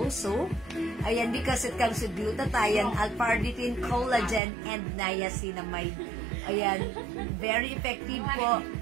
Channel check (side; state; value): left; drops out; at 4.4 s